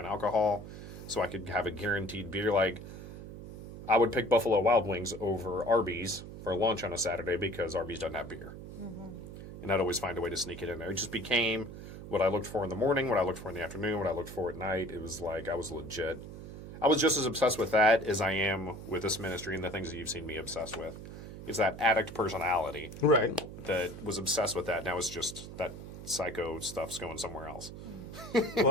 alcohol, so I could have a guaranteed beer. Like, I would pick Buffalo Wild Wings over Arby's for lunch on a Saturday because Arby's doesn't have beer. And I'd always find a way to sneak it in there. It just became what I looked for in the morning, what I looked for in the afternoon, what I looked for at night. It was like I was legit. I was just as obsessed with that as I am with this ministry and the things that you've seen me obsessed with. It's that addict personality. Right. That was obsessed with that. Now it's just that psycho stuff's going somewhere else. Well,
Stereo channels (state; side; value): noise; right; hum, 12 dB below the sound